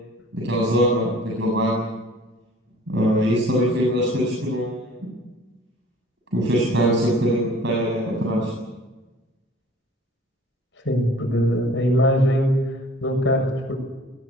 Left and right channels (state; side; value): normal; both; correlation 0.49